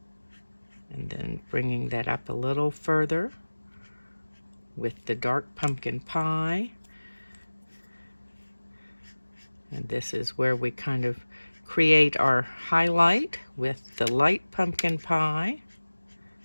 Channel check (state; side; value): inverted; both; correlation -1.00